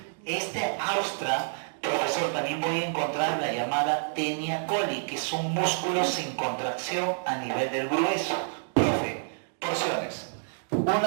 Este austra, profesor, también voy a encontrar la llamada tenia coli, que es un músculo sin contracción a nivel del grueso. Profe, porciones.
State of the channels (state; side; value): silent; left; digital silence